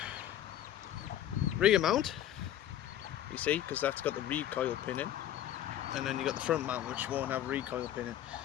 rear mount, you see, because that's got the recoil pin in, and then you got the front mount which won't have recoil pin in.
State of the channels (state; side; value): quieter; right; 11.6 dB